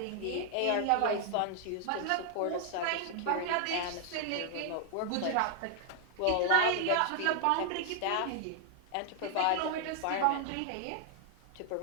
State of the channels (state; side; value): different; both; correlation 0.00